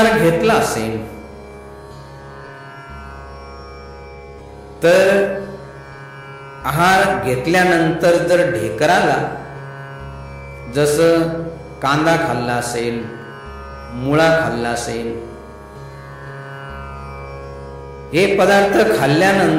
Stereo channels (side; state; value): both; identical; correlation 1.00